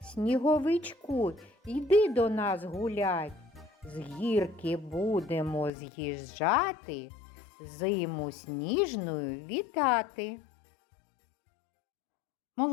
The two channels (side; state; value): right; drops out; at 5.7 s